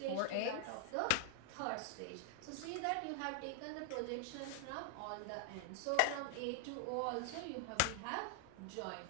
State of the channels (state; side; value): different; both; correlation 0.00